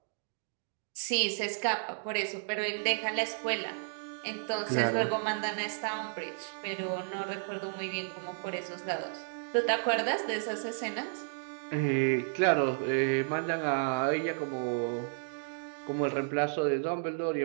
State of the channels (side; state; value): left; silent; digital silence